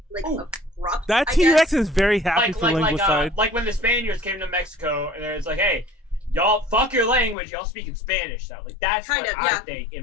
like abrupt. That T-Rex is very happy for linguicide. Like when the Spaniards came to Mexico and it's like, hey, y'all fuck your language, y'all speak in Spanish. So like that's kind of I think in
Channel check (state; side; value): drops out; right; at 7.4 s